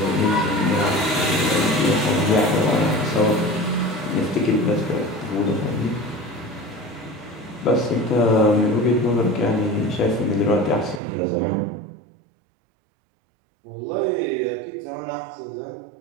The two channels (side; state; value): left; drops out; at 11.0 s